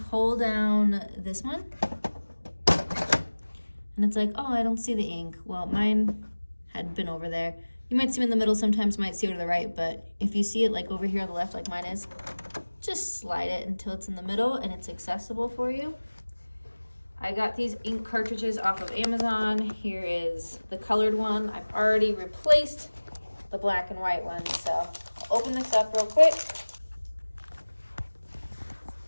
pull down this one, and it's like, oh, I don't see the ink. Well, mine had been over there. You might see them in the middle, sometimes you might see it to the right, but if you see it like over here on the left like mine is, just slide it until it's in the middle and it's accessible for you. I got these ink cartridges off of Amazon. Here is the colored one. I've already replaced the black and white one, so I'll open this up real quick.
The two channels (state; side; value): inverted; both; correlation -1.00